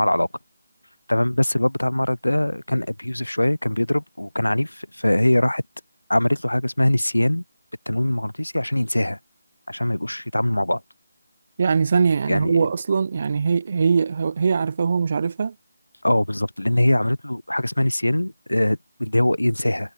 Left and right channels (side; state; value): both; inverted; correlation -0.96